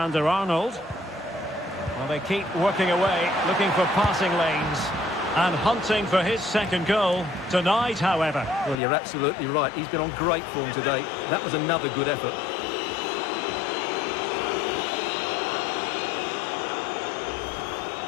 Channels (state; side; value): drops out; right; at 8.8 s